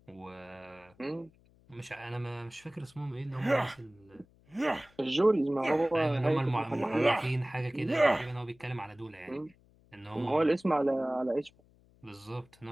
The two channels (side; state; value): left; noise; hum, 30 dB below the sound